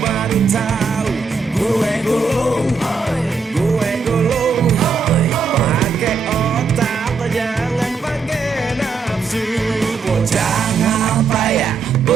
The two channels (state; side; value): quieter; left; 4.9 dB